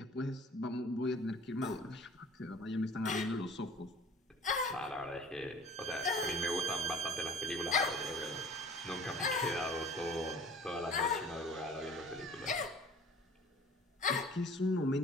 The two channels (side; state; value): both; normal; correlation 0.47